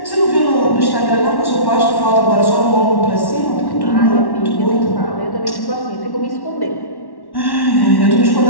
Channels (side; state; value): right; late; 1.1 ms